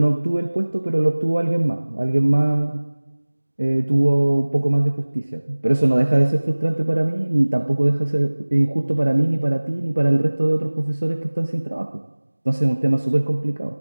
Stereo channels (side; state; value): both; inverted; correlation -1.00